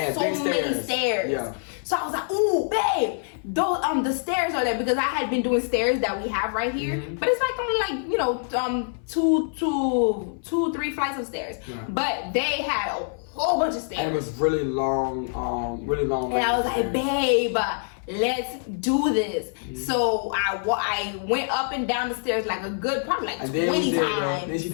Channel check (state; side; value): silent; right; 58 dB below the other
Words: so many stairs. Yeah. So I was like, "Ooh, babe, those the stairs are there," because I had been doing stairs that we have right here, but it's like only like two, 3 flights of stairs. Yeah. But they had a whole bunch of stairs. And it was really long, And I was like, "Babe, let's do this." So I went up and down the stairs like a good, probably like 20 times. Then she